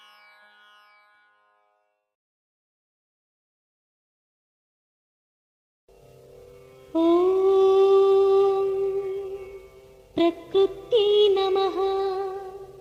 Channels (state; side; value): identical; both; correlation 1.00